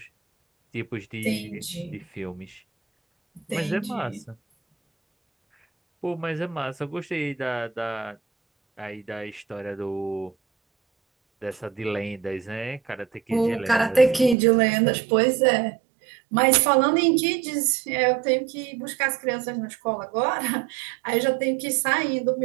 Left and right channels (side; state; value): left; drops out; at 14.4 s